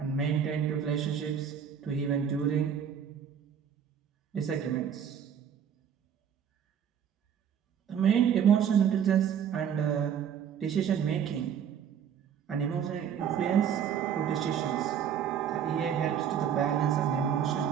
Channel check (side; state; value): left; quieter; 8.3 dB